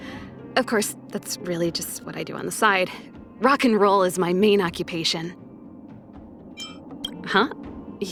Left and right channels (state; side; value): identical; both; correlation 1.00